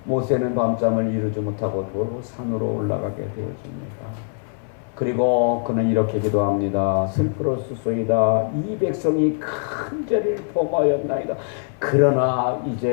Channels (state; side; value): silent; right; 61 dB below the other